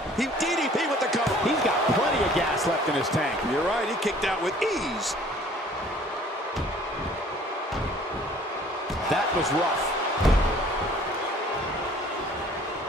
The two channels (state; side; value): normal; both; correlation 0.54